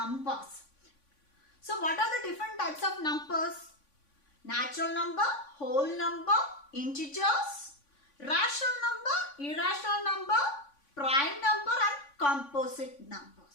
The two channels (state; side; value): late; right; 3.5 ms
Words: So what are the different types of numbers? Natural number, whole number, integers, rational number, irrational number, prime number and composite numbers.